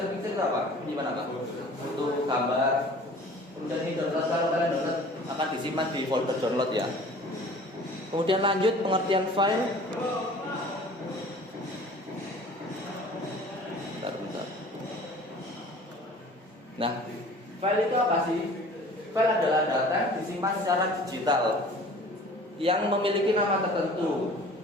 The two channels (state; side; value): normal; both; correlation 0.46